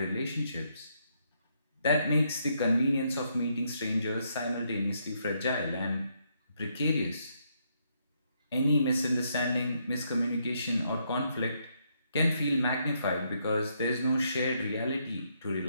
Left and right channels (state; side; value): inverted; both; correlation -0.75